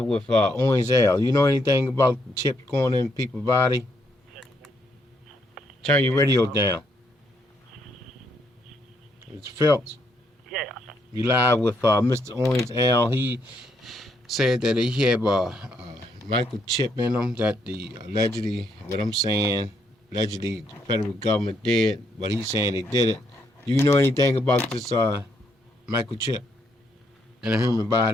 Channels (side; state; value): both; normal; correlation 0.75